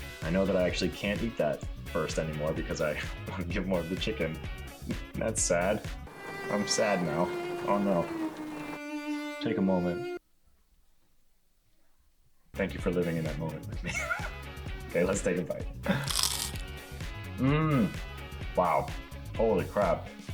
I know that I actually can't eat that first anymore because I want to give more of the chicken. That's sad. I'm sad now. Oh no. Take a moment. Thank you for living in that moment with me. Okay, let's take a bite. Wow. Holy crap.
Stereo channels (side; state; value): both; identical; correlation 1.00